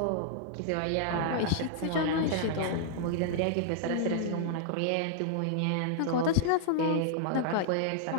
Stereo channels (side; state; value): both; different; correlation -0.01